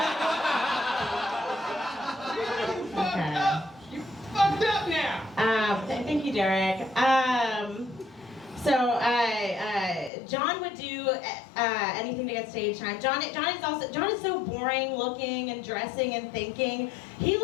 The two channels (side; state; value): right; drops out; at 10.1 s